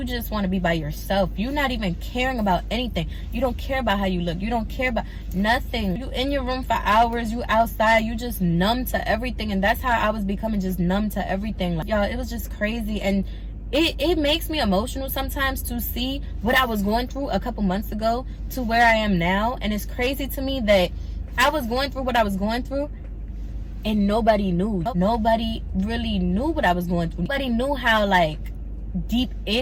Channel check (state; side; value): identical; both; correlation 1.00